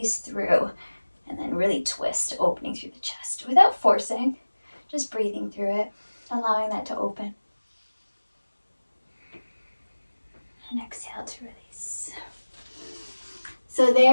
through. And then really twist, opening through the chest without forcing, just breathing through it, allowing that to open. And exhale to release. So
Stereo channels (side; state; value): both; inverted; correlation -1.00